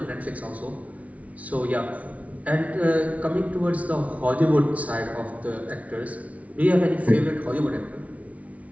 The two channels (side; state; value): left; late; 0.067 ms